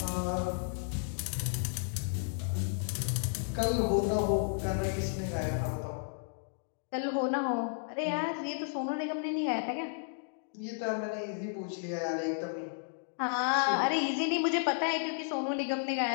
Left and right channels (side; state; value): right; silent; digital silence